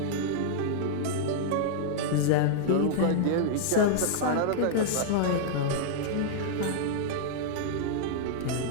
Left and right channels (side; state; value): both; different; correlation -0.01